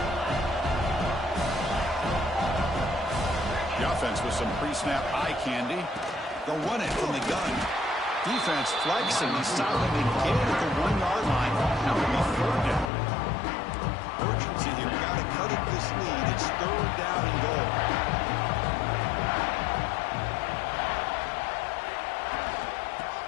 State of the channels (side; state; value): right; drops out; at 12.9 s